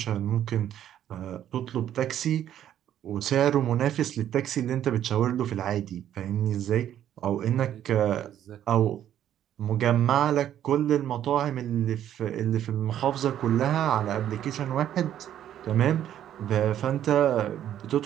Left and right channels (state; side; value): quieter; left; 10.9 dB